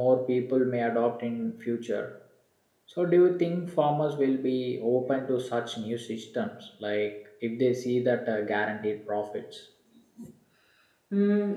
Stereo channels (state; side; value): identical; both; correlation 1.00